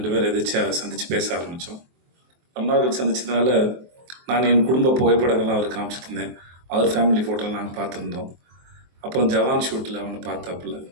பேர் எதாச்சும் சந்தித்து பேச ஆரம்பித்தோம். ரொம்ப நாள் சந்திச்சதுனால நான் என் குடும்ப புகைப்படங்கள்லாம் அவருக்கு காமிச்சிட்டு இருந்தேன். அவர் ஃபேமிலி ஃபோட்டோலாம் நாங்கள் பார்த்துருந்தோம். அப்புறம் ஜவான் ஷூட்டில் அவனை பார்த்தாப்புல.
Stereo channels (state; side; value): late; left; 23 ms